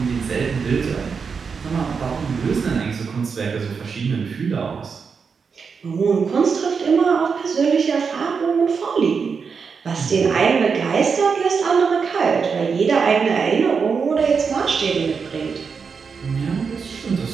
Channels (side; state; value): left; quieter; 5.7 dB